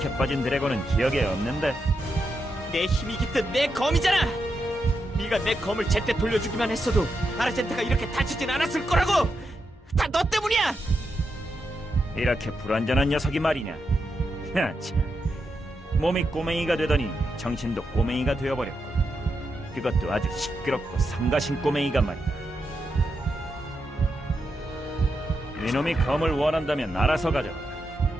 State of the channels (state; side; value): normal; both; correlation 0.85